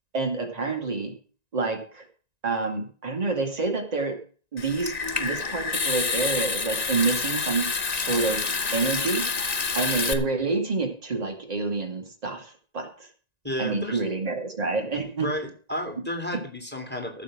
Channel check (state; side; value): late; left; 1.9 ms